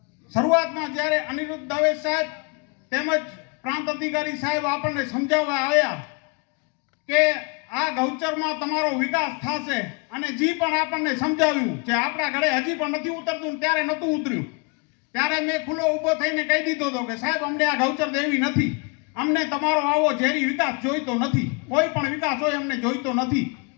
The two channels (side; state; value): right; quieter; 32.3 dB